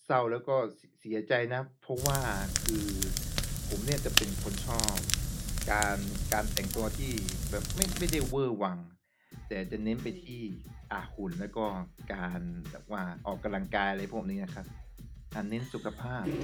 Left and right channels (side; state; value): both; identical; correlation 1.00